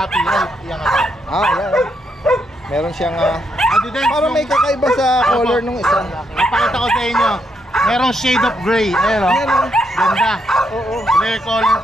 Right? Yan nga. Yan. Meron siyang Daddy Des, parang may kakaiba sa color nung isa. Napakita ko sa inyo. Merong shade of gray. Ayan o. Yan o. Ganda. Oo. Rare color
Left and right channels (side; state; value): both; normal; correlation 0.78